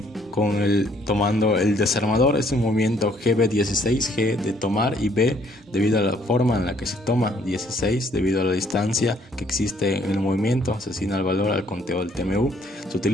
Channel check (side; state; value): both; normal; correlation 0.64